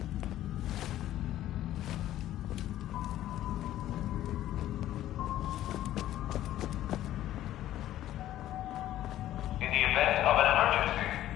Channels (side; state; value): right; quieter; 13.3 dB